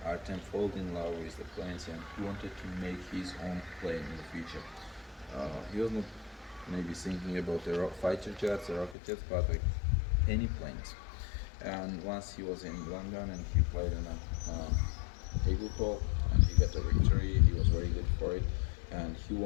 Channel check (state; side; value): drops out; right; at 9.0 s